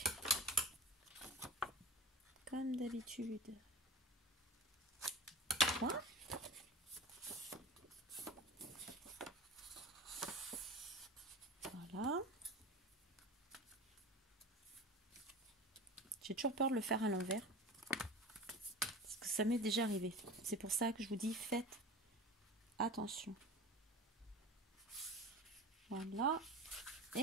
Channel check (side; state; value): both; normal; correlation 0.33